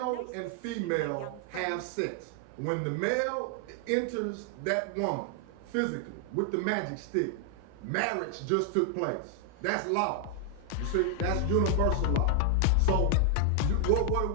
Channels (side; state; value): both; different; correlation 0.00